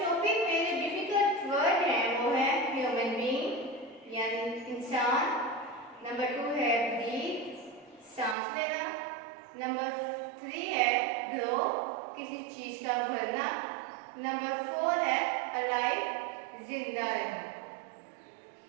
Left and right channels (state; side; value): drops out; left; at 8.3 s